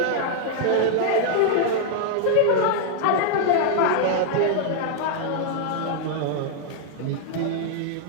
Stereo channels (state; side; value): different; both; correlation -0.01